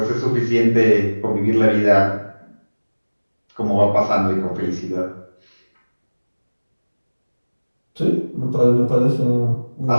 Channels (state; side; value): inverted; both; correlation -1.00